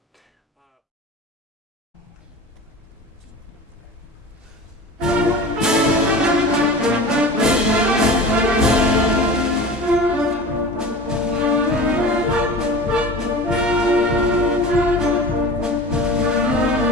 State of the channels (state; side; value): normal; both; correlation 0.35